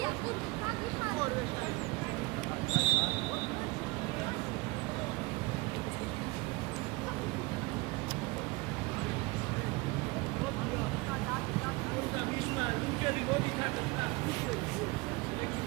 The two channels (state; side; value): quieter; left; 23.9 dB